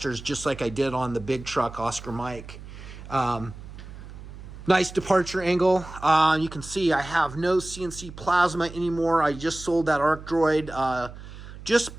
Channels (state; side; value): noise; right; hum, 14 dB below the sound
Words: just like I did on the big truck Oscar Mike. Nice departure angle. You can see I have no CNC plasma anymore. I just sold that Arc Droid. Just